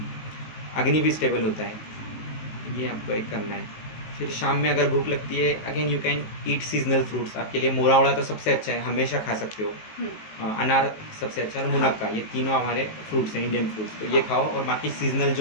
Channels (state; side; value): late; right; 19 ms